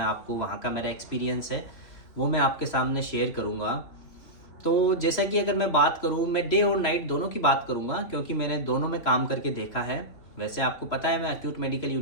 आपको वहाँ का मेरा एक्सपीरियंस है वो मैं आपके सामने शेयर करूँगा। तो जैसा कि अगर मैं बात करूँ, मैं डे और नाइट दोनों की बात करूँगा, क्योंकि मैंने दोनों में काम करके देखा है। वैसे आपको पता है मैं एक्यूट मेडिकल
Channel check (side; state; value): right; late; 3.0 ms